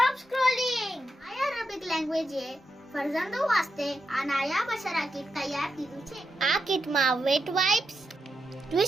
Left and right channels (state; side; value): normal; both; correlation 0.86